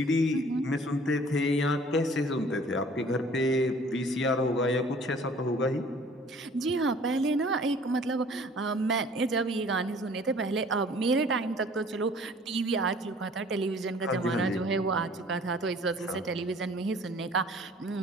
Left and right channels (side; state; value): both; normal; correlation 0.52